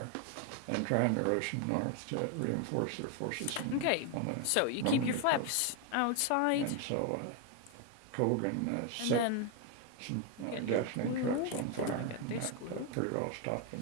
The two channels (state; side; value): different; both; correlation 0.01